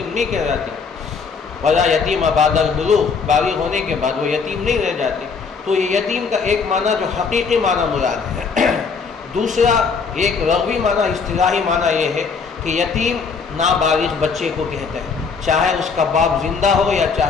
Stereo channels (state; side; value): quieter; right; 5.3 dB